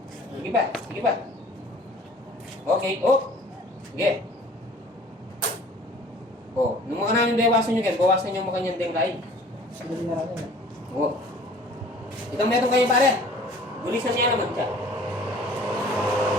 Sige pa. Okay, Sige. Nung mga namin bawasan nyo kayo, bawasan nyo mga kanyang denglain. Itong meron kayo pare. Bulisan niya naman siya.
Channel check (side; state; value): both; normal; correlation 0.49